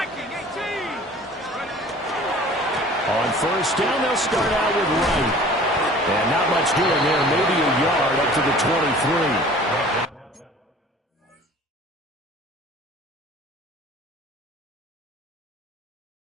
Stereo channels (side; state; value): both; normal; correlation 0.47